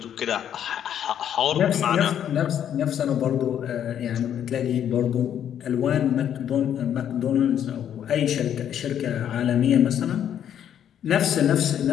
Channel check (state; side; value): quieter; right; 9.7 dB